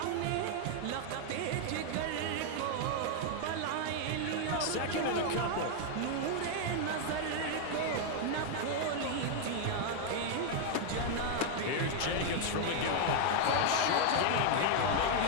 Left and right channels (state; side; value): different; both; correlation 0.00